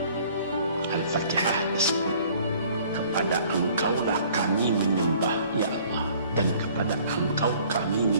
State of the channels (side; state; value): both; inverted; correlation -0.55